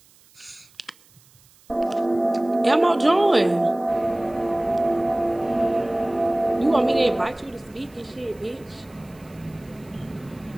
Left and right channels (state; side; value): noise; right; hiss, 29 dB below the sound